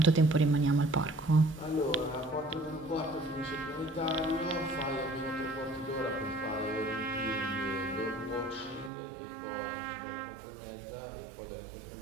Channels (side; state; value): left; drops out; at 8.9 s